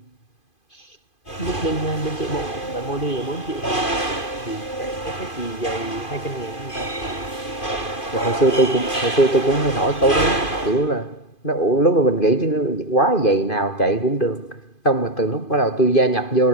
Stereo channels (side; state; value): right; late; 2.5 ms